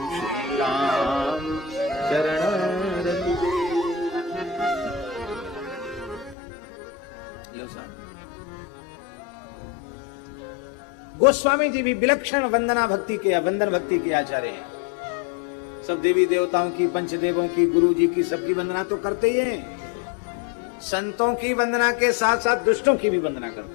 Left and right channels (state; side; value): drops out; right; at 6.4 s